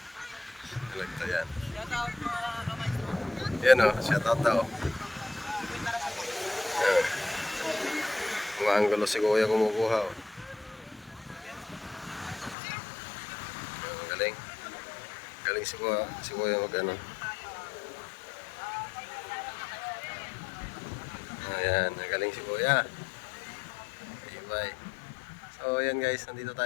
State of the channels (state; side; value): drops out; right; at 12.6 s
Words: Talagta yan. Yan o, shout out daw. Yan. Mga anggulo si Kuya kumukuha o. Galing. Galing si Kuya mag ano. Ayan, galing si Kuya. Bye. So ayan guys, nandito